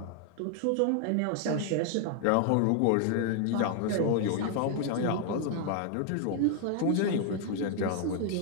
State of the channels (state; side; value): different; both; correlation 0.00